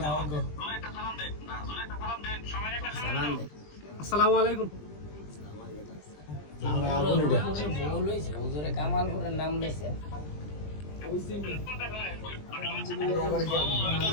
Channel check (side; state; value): right; late; 20 ms